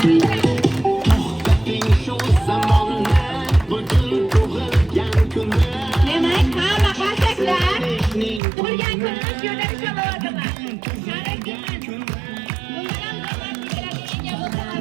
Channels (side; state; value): left; drops out; at 8.4 s